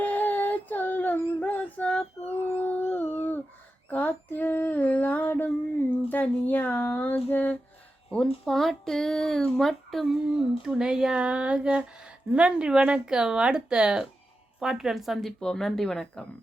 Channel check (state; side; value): normal; both; correlation 0.91